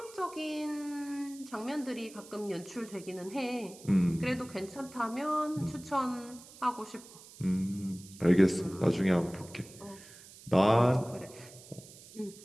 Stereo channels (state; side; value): noise; right; hiss, 19 dB below the sound